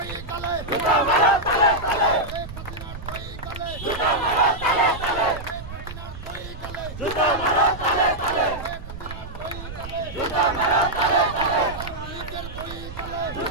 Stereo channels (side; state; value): right; noise; rumble, 11 dB below the sound